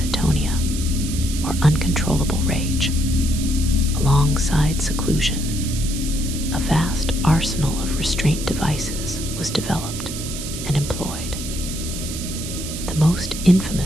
or uncontrollable rage. Alongside seclusion, a vast arsenal of restraint devices was developed and employed. The most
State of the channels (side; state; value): right; noise; hiss, 8 dB below the sound